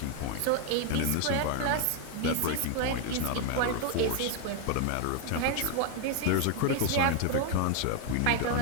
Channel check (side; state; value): both; different; correlation 0.01